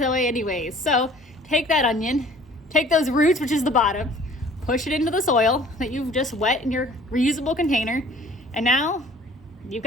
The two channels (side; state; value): both; normal; correlation 0.52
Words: away anyways. So take that onion, take those roots, which is the bottom, push it into the soil that you've just wet in your reusable container. And now you've